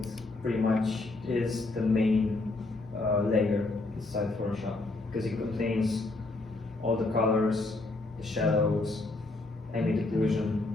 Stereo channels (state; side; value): quieter; right; 3.1 dB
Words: pretty much is the main layer inside Photoshop, because it contains all the colors, the shadows, ambient occlusion,